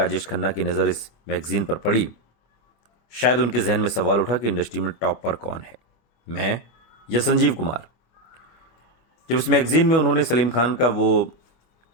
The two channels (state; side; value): late; right; 25 ms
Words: खन्ना की नज़र इस मैगजीन पर पड़ी, शायद उनके जहन में सवाल उठा कि इंडस्ट्री में टॉप पर कौन है, मैं या संजीव कुमार। जब इस मैगजीन में उन्होंने सलीम खान का वो